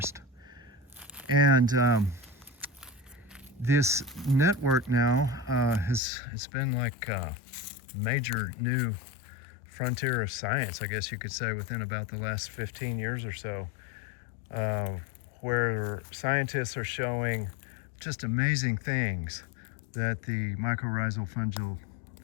And this network now it's been like a major new frontier of science, I guess you could say, within about the last 15 years or so, where scientists are showing just amazing things that the mycorrhizal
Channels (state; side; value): drops out; right; at 6.0 s